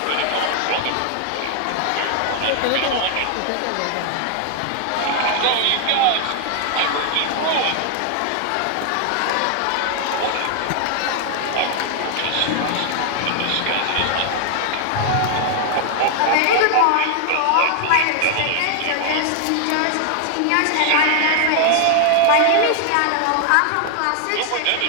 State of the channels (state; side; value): different; both; correlation 0.00